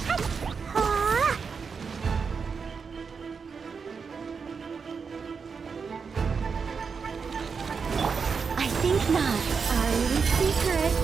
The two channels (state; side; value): quieter; left; 5.6 dB